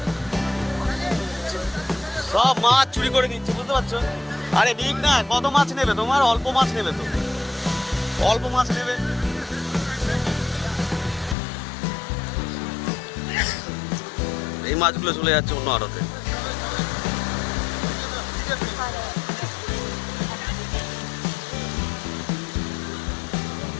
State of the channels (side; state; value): right; drops out; at 11.4 s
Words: সব মাছ চুরি করে নিচ্ছে, বুঝতে পারছো? আরে ঠিক না, কত মাছ নেবে তোমার? অল্প মাছ নেবে তো, অল্প মাছ নেবে। এই মাছগুলো চলে যাচ্ছে অন্য আড়তে।